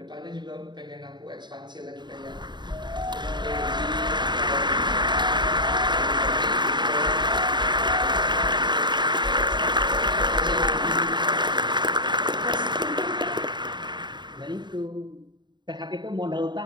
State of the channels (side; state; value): left; late; 0.22 ms